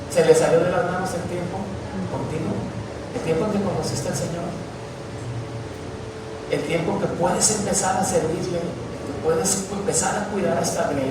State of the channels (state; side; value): identical; both; correlation 1.00